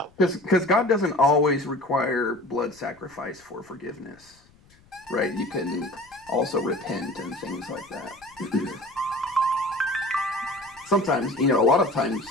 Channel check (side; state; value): left; noise; rumble, 29 dB below the sound